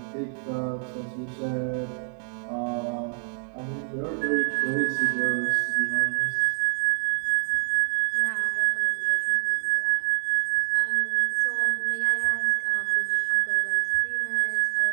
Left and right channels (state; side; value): silent; left; 61 dB below the other